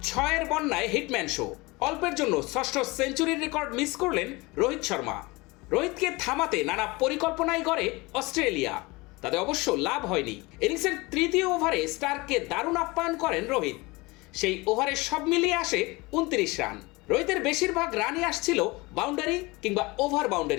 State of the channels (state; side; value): quieter; right; 23.7 dB